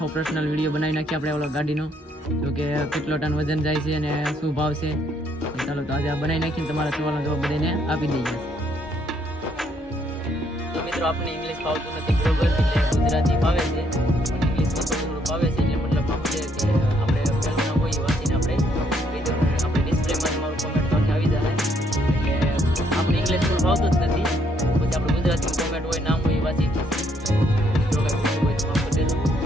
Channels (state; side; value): normal; both; correlation 0.70